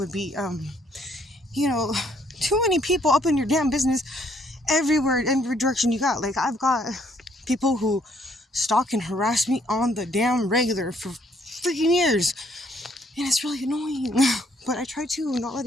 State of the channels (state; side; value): normal; both; correlation 0.67